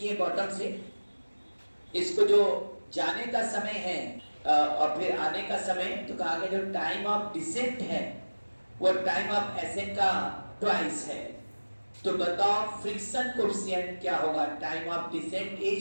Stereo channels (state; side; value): inverted; both; correlation -1.00